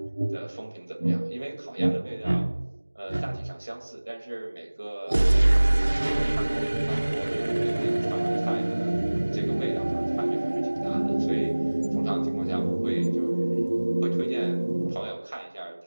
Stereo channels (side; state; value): both; inverted; correlation -1.00